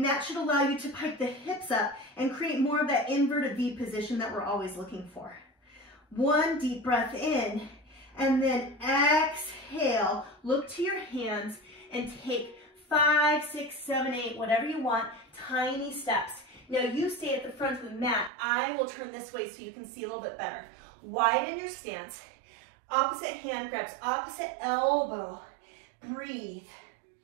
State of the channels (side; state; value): left; drops out; at 18.3 s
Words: that should allow you to pike the hips up and create more of that inverted V position that we're always looking for. 1 deep breath in, and then exhale. Look to your hands and take 5, 6, 7, 8, whatever you want, tiny steps. Now you stay at the front of the mat. I will turn this way so you can see a little bit better. Widen your stance. Opposite hand grabs, opposite elbow. Breathe.